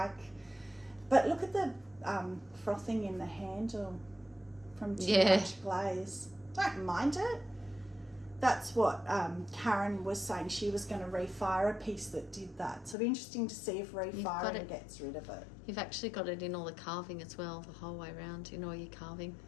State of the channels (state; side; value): drops out; right; at 13.0 s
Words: But look at the frothing in the handle from too much glaze. Don't mind it. That's what Karen was saying. She was going to refire a piece that did that. So it'll be interesting to see if refiring gets rid of it. You've actually got it in all the carving as well, the whole way around in all your carving.